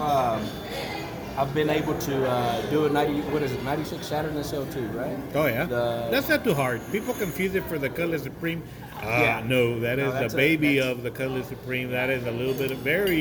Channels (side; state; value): both; identical; correlation 1.00